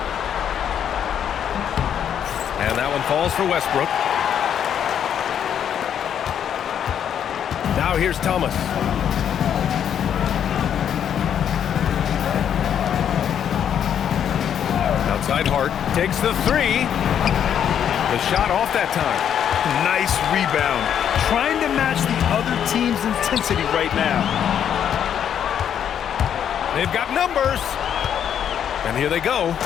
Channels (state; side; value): quieter; right; 9.0 dB